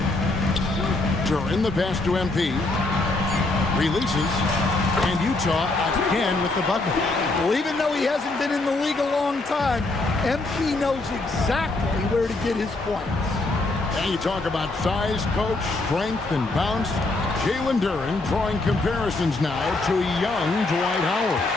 During the pass to MP. Releases. And Utah again with the bucket. Well, even though he hasn't been in the league a long time, MP knows exactly where to get his points. And you talk about size, coach, strength, and bounce. Jalen Duren drawing comparisons now to young Dwight Howard.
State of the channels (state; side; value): quieter; right; 3.1 dB